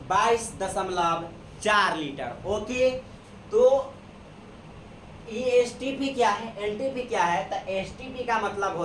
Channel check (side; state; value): both; identical; correlation 1.00